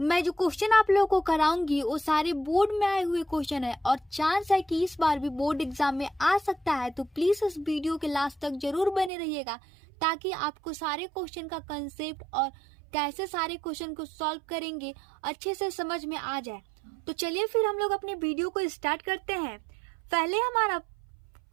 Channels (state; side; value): drops out; left; at 9.1 s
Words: मैं जो क्वेश्चन आप लोगों को कराऊंगी वो सारे बोर्ड में आए हुए क्वेश्चन है और चांस है कि इस बार भी बोर्ड एग्जाम में आ सकता है। तो प्लीज़ इस वीडियो के लास्ट तक जरूर बने रहिएगा, ताकि आपको सारे क्वेश्चन का कंसेप्ट और कैसे सारे क्वेश्चन को सॉल्व करेंगे अच्छे से समझ में आ जाए। तो चलिए फिर हम लोग अपने वीडियो को स्टार्ट करते हैं। पहले हमारा